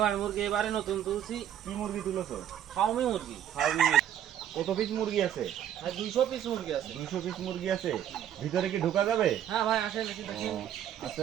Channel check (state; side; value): quieter; left; 10.4 dB